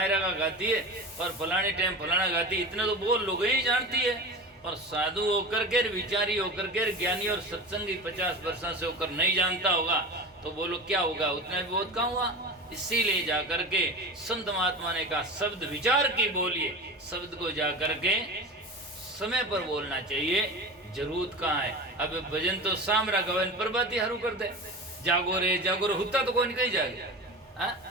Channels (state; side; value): normal; both; correlation 0.29